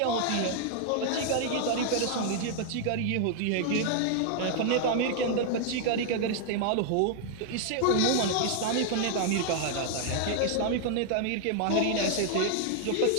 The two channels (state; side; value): different; both; correlation 0.00